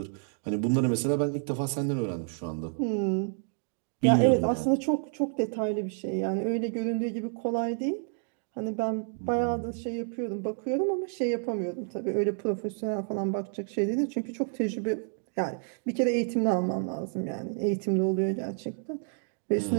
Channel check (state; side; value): silent; left; 58 dB below the other